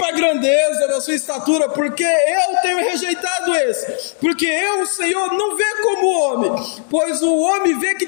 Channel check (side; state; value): right; silent; 57 dB below the other